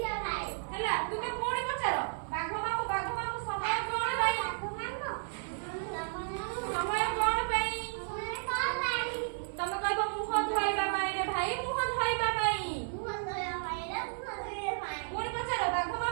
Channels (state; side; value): silent; left; 56 dB below the other